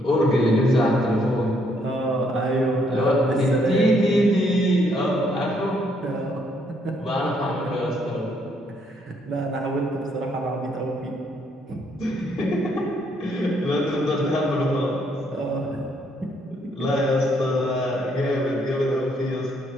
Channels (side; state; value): both; normal; correlation 0.71